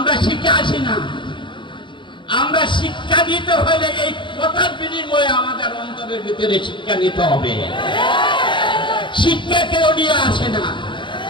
শিক্ষা আসি না, আমরা শিক্ষা নিতে হলে এই কথার বিনিময়ে আমাদের অন্তরের ভিতরে শিক্ষা নিতে হবে। শিক্ষা কেউ নিয়ে আসে না।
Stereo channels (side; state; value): right; late; 0.23 ms